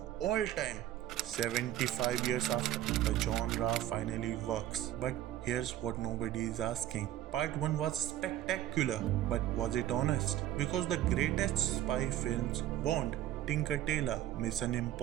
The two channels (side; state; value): left; quieter; 13.0 dB